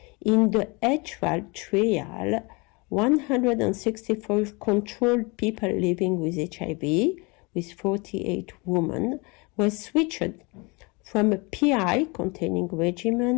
In the HRAL trial, 164 controlled people living with HIV, with 48 women, were switched from a PI containing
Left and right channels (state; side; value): quieter; right; 28.1 dB